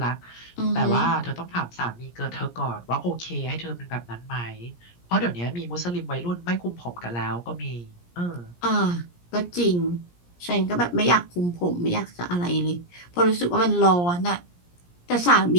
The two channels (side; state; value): right; late; 17 ms